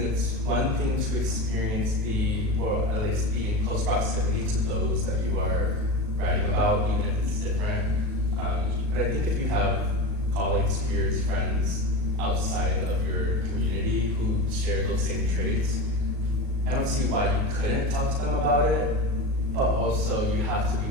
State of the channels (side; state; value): left; late; 37 ms